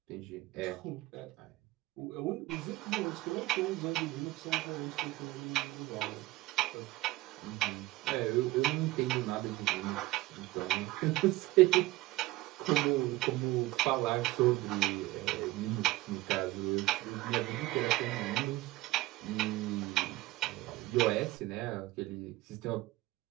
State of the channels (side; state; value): left; quieter; 18.3 dB